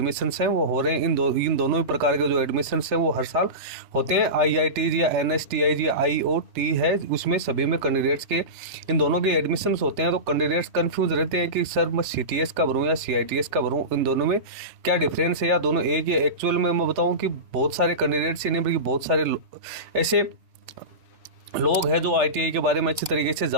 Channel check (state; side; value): late; left; 3.4 ms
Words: हैं वो हो रहे हैं। इन दोनों ही प्रकार के जो एडमिशन्स हैं वो हर साल होते हैं। IIT या NSTI या IOT है, उसमें सभी में कैंडिडेट्स के इन दोनों के एडमिशन्स होते हैं। तो कैंडिडेट्स कंफ्यूज रहते हैं कि सर मैं CTS का भरूँ या CITS का भरूँ, इन दोनों में क्या डिफरेंस है या दोनों एक ही। एक्चुअल में मैं बताऊं कि बहुत सारे कैंडिडेट्स ही नहीं बल्कि बहुत सारे ऐसे लोग हैं जो ITI के बारे में अच्छी तरीके से